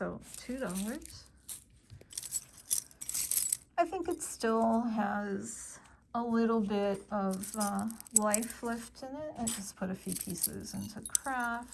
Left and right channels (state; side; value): identical; both; correlation 1.00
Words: $2. I think it still has a little bit of life left in it. I just put a few pieces into